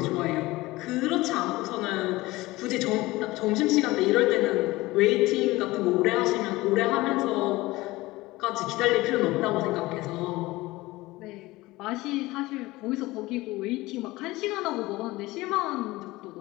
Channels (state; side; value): quieter; right; 19.7 dB